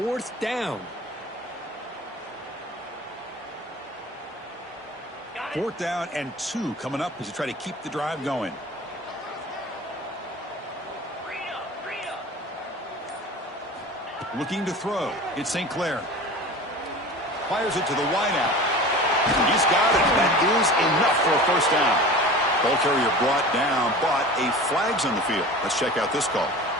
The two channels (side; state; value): both; normal; correlation 0.37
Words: down? 4th down and 2 coming up as you try to keep the drive going. Looking to throw. It's St. Clair. Fires it to the wideout. He's got it. That is enough for a first down. Ball carrier brought down, but a flag's on the field. Let's check out this call.